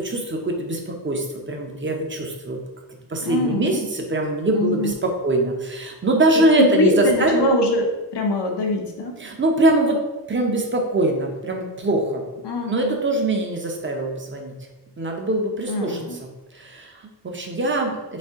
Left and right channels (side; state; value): both; normal; correlation 0.12